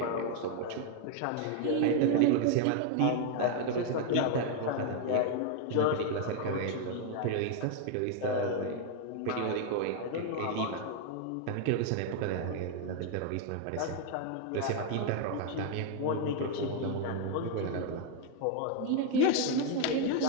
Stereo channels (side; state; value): both; different; correlation 0.00